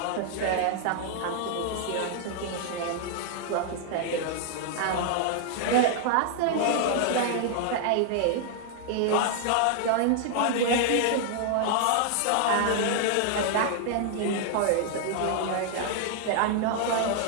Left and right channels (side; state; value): both; different; correlation 0.00